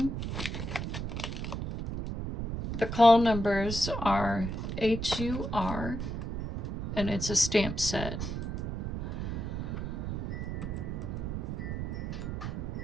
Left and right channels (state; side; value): noise; right; rumble, 4 dB below the sound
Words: the call numbers are HUR, and it's a stamp set.